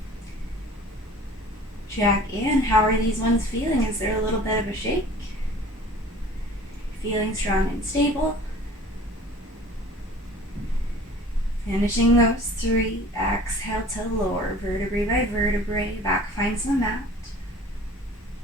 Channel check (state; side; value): normal; both; correlation 0.46